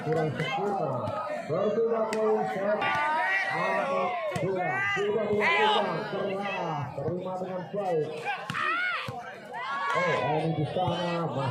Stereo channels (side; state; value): both; identical; correlation 1.00